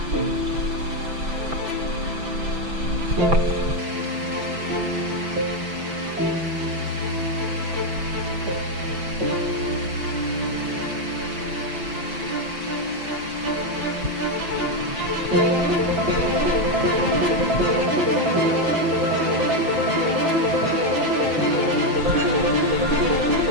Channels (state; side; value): late; left; 6.0 ms